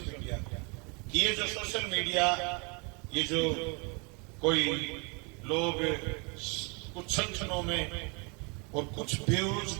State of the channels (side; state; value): left; quieter; 32.3 dB